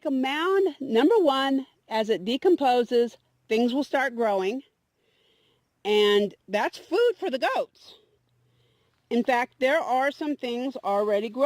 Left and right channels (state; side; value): identical; both; correlation 1.00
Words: a mound. Number one, as it decomposes, things will start growing. And that's food for the goats. In fact, there are some things already